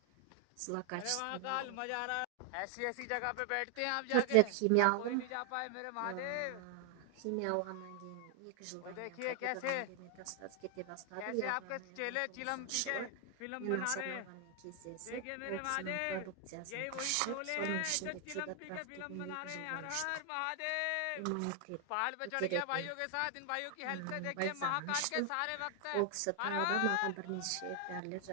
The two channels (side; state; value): both; different; correlation 0.00